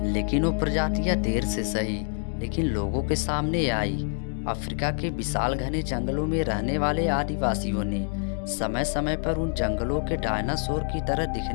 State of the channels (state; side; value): silent; right; 58 dB below the other